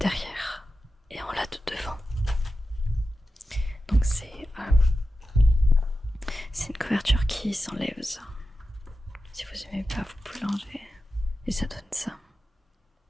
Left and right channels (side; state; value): both; normal; correlation 0.92